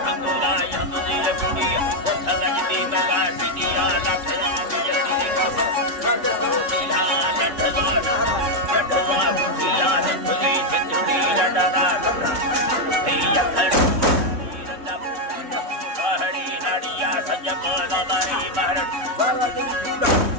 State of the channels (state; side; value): late; left; 3.6 ms